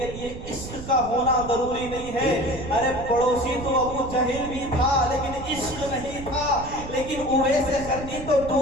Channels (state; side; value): noise; right; rumble, 11 dB below the sound